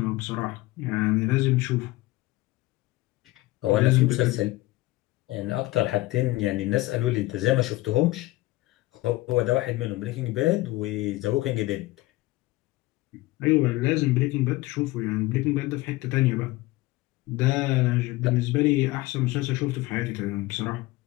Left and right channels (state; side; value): quieter; right; 19.2 dB